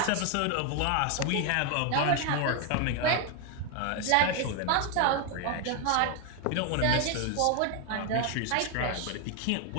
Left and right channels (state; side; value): different; both; correlation 0.01